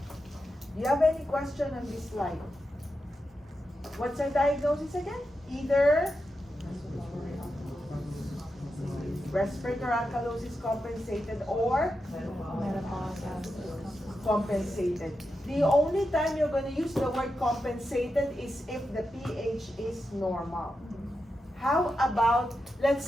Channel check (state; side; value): normal; both; correlation 0.88